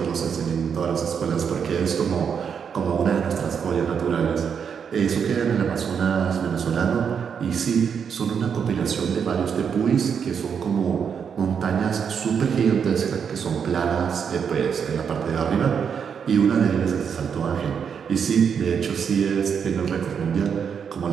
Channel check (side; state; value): left; quieter; 7.0 dB